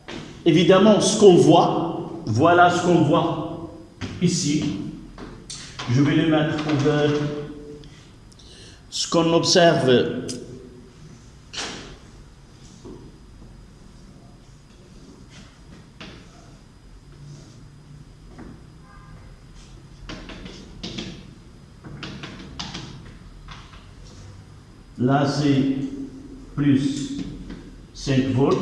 Évidemment, ce qu'on voit, voilà ce qu'on voit ici. Je vais le mettre pour ce qu'on observe. Là, c'est plus 5 volts.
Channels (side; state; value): both; identical; correlation 1.00